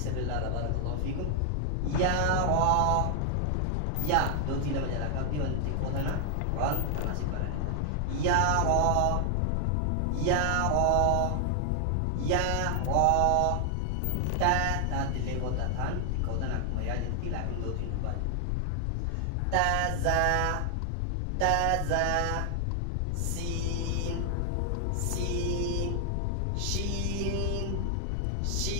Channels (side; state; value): both; different; correlation 0.00